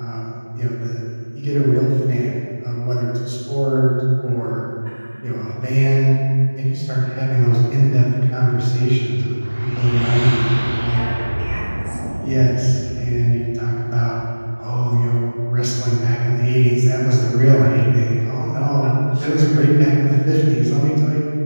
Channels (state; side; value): inverted; both; correlation -1.00